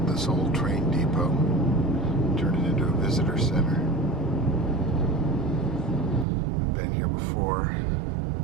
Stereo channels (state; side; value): drops out; left; at 6.2 s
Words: this old train depot, turned it into a visitor center. I've been here before.